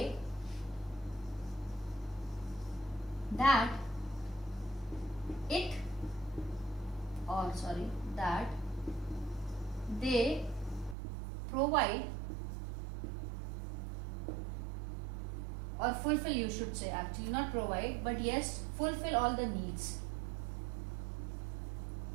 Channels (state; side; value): drops out; left; at 11.0 s